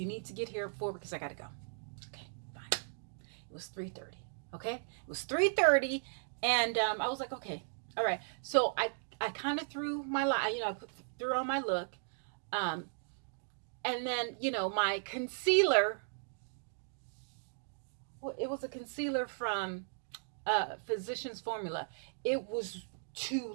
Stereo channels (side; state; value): left; silent; digital silence